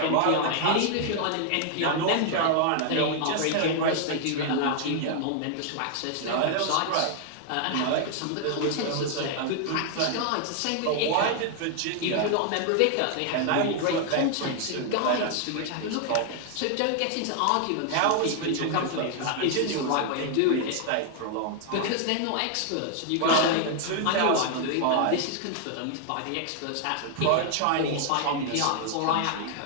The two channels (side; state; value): both; different; correlation 0.00